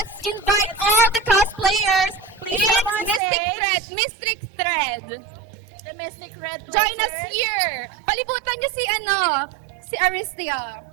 invite all the cosplayers Please in come on stage. Mystic Thread. The Mystic Red Join us Blazers. here. Palibutan niyo si Aristia.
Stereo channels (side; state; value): left; drops out; at 3.2 s